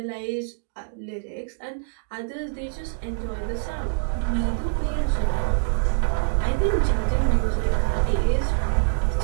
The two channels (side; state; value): left; silent; digital silence